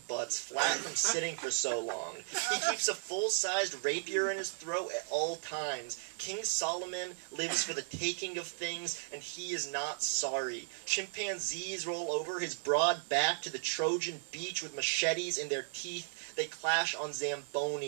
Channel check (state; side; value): silent; left; digital silence